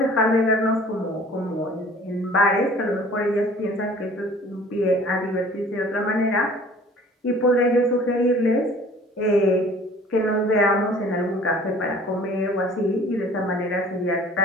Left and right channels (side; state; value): both; normal; correlation 0.49